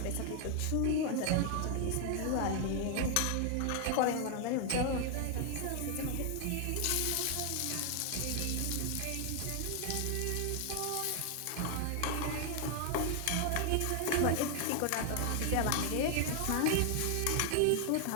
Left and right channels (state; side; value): different; both; correlation 0.00